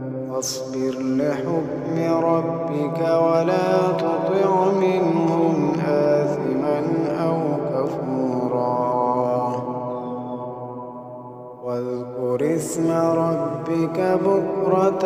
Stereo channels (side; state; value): both; identical; correlation 1.00